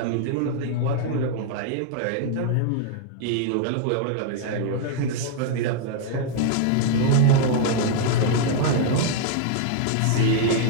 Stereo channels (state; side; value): different; both; correlation 0.00